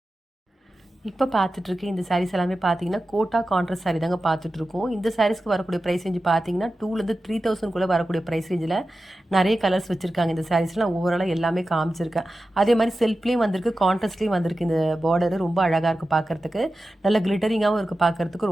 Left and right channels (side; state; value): both; normal; correlation 0.93